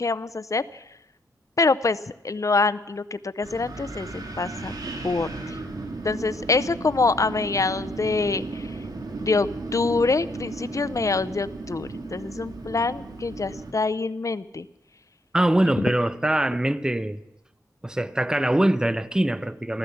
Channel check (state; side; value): normal; both; correlation 0.74